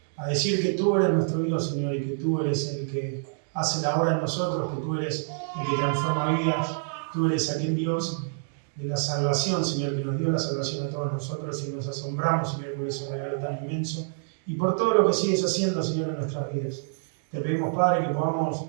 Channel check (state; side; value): silent; left; digital silence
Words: a decir que tú eres nuestro Dios, Señor, y que tú eres el que hace la obra en nosotros, que tú eres el que transforma vidas. Tú eres aquel Dios de la salvación, Señor, que nos dio la salvación a todos nosotros y nos asombramos, Señor, por ese regalo tan inmenso y por todo lo que sigues haciendo, Señor, en nuestras vidas. Te pedimos, Padre, que podamos